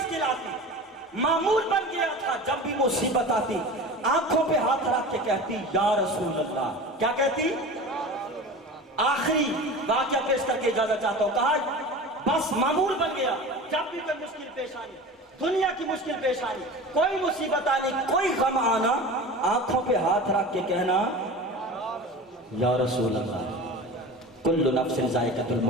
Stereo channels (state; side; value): normal; both; correlation 0.34